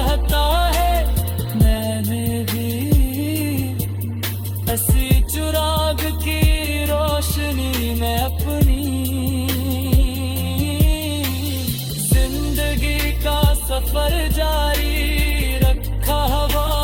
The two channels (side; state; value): both; identical; correlation 1.00